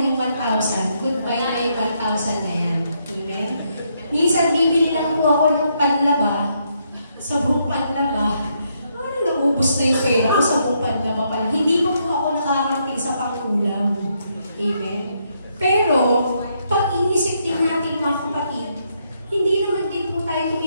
1,000, goodbye na yung 1,000 na yan. Amen? Minsan, bibili lang po ako ng panlaba, sa buong panlaba. Naubos na yung pera ko sa buong panlaba pa lang. Hindi po ako nakakarating sa pangkulang. Amen? Pero, pag inisip din natin, mga kapatid, hindi naman din po tayo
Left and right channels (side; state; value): both; inverted; correlation -0.76